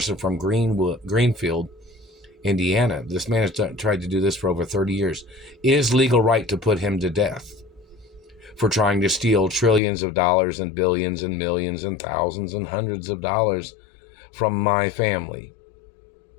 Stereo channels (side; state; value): right; drops out; at 9.8 s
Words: from Greenfield, Indiana. This man has tried to do this for over 30 years. It is legal right to put him to death for trying to steal trillions of dollars and billions and millions and thousands and hundreds of dollars from my family.